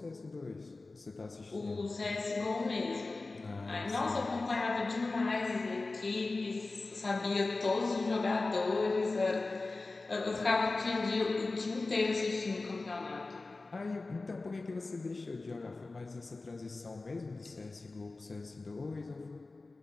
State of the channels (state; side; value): quieter; right; 3.5 dB